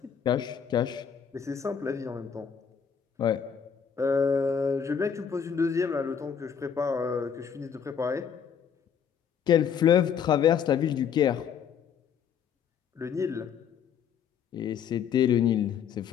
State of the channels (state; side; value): quieter; right; 7.6 dB